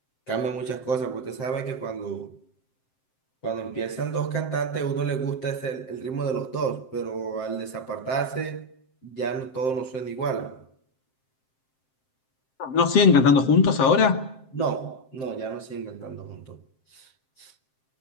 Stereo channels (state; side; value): late; right; 7.6 ms